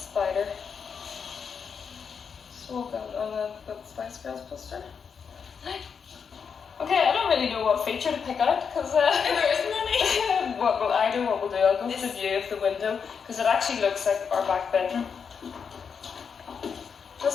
So we'll go on the Spice Girls poster. Okay, I don't really know what feature to pick out because There isn't any. I know what we'll do. I'll go to the view of the window because it actually looks like our back bedroom,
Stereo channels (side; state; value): right; quieter; 6.4 dB